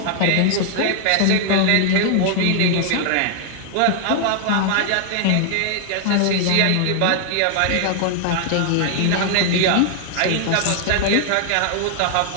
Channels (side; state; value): both; different; correlation 0.00